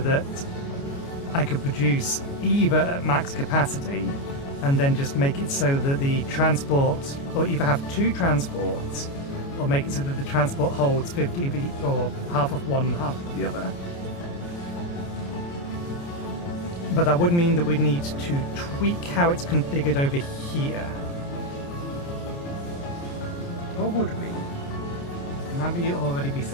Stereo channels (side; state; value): right; late; 29 ms